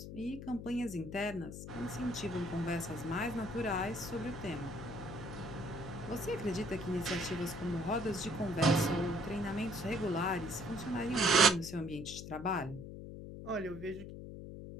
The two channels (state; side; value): noise; left; hum, 10 dB below the sound